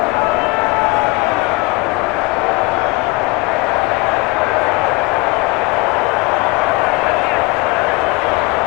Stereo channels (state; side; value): quieter; right; 23.8 dB